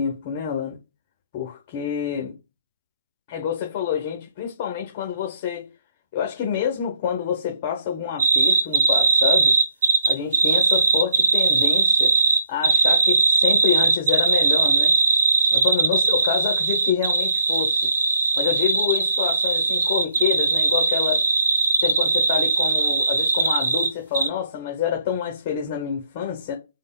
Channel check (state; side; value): inverted; both; correlation -0.71